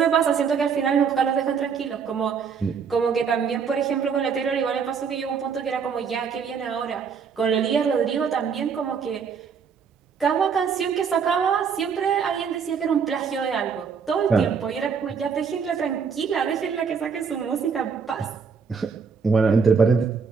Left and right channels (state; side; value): quieter; left; 6.2 dB